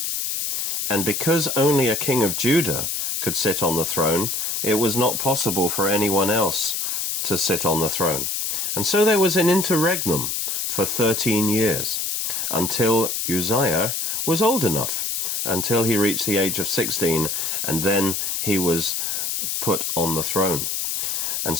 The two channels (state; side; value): noise; left; hiss, 1 dB below the sound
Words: And because only a king of Judah could sit on the throne, it was not possible for anyone else to sit on the throne. And so there was an interregnum for 13 years, until Uzziah was old enough, until he reached the age of 16, and then he was put on the throne. And